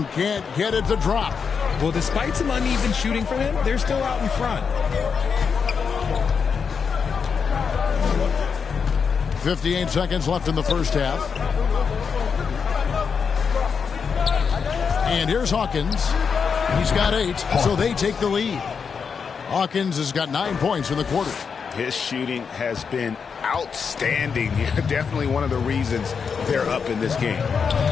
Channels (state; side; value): quieter; right; 6.1 dB